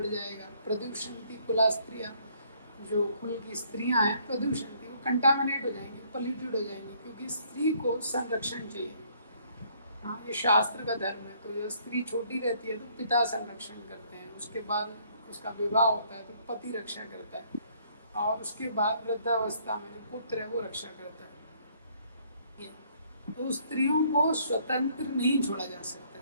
जाएगा। प्रदूषंति कुला स्त्रियां, जो कुल की स्त्रियां हैं प्रदूषंति, वो कंटामिनेट हो जाएंगी, पॉल्यूटेड हो जाएंगी, क्योंकि स्त्री को संरक्षण चाहिए। हाँ, ये शास्त्र का धर्म है। तो जब स्त्री छोटी रहती है तो पिता संरक्षण करते हैं, उसके बाद उसका विवाह होता है तो पति रक्षा करता है, और उसके बाद वृद्धावस्था में जो पुत्र है वो रक्षा करता है। तो स्त्रियों को स्वतंत्र नहीं छोड़ा जा सकता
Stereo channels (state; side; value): inverted; both; correlation -0.64